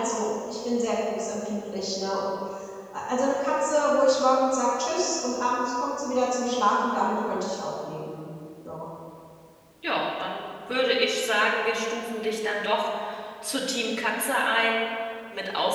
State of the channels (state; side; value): identical; both; correlation 1.00